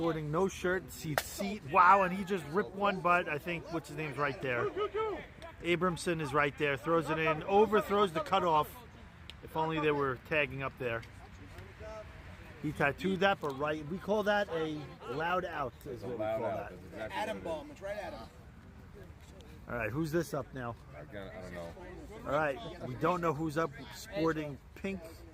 no shirt, seat. Wow, and he just ripped one, but I think what's his name's right there. Abramson is right there. Throws it in. Overthrows the cutoff. If only they were tagging up there. He tattooed that, but right. We call that a loud out. Is what we call that. Exactly Adam bomb. It's right at him. All right, who's this up now? I don't know. All right, we don't know who's up. Sporting pink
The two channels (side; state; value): both; identical; correlation 1.00